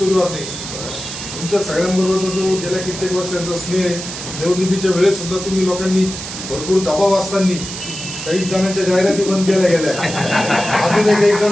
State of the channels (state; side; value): noise; right; hiss, 8 dB below the sound